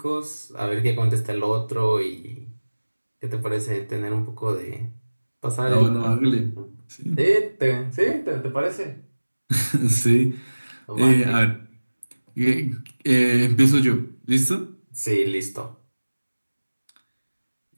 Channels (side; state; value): both; inverted; correlation -1.00